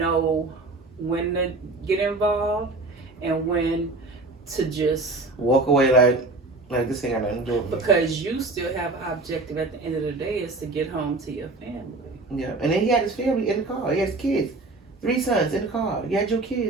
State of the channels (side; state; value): left; quieter; 3.2 dB